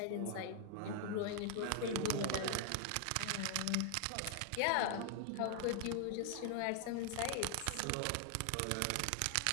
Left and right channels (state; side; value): different; both; correlation 0.00